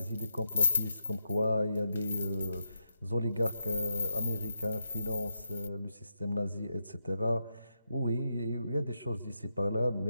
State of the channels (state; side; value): inverted; both; correlation -0.84